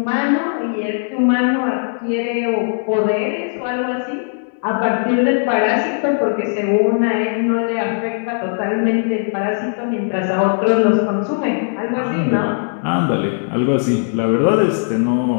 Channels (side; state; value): right; silent; digital silence